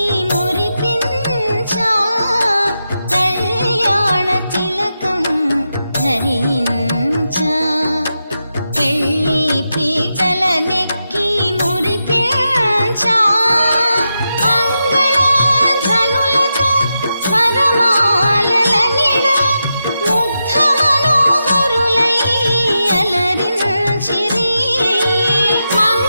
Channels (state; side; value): inverted; both; correlation -0.88